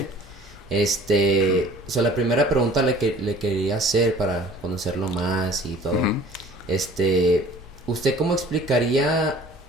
La primera pregunta le quería hacer para conocerlo más y todo. Ujú. ¿Usted cómo explicaría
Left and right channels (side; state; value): both; normal; correlation 0.49